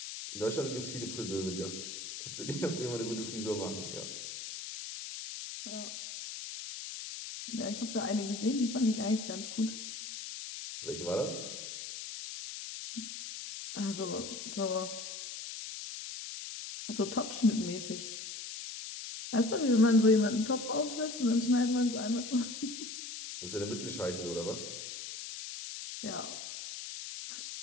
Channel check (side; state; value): left; noise; hiss, 8 dB below the sound